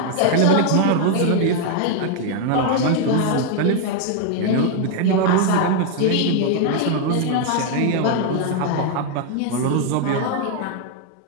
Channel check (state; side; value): different; both; correlation 0.00